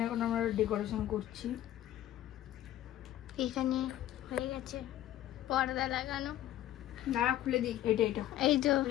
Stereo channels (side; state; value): right; quieter; 13.2 dB